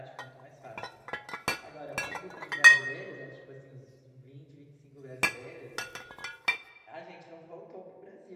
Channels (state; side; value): identical; both; correlation 1.00